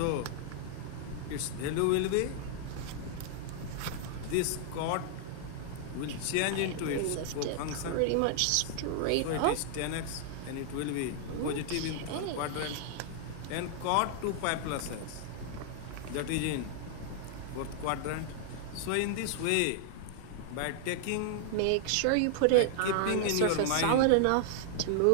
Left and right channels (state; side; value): different; both; correlation 0.00